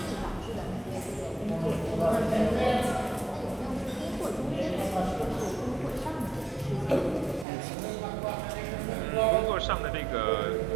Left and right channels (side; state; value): left; drops out; at 7.5 s